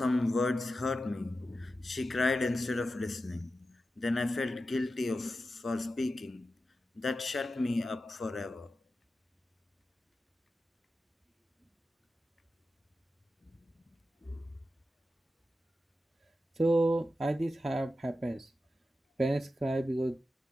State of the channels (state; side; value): normal; both; correlation 0.91